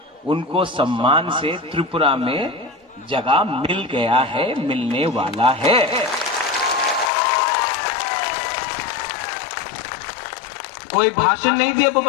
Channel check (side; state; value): right; drops out; at 7.1 s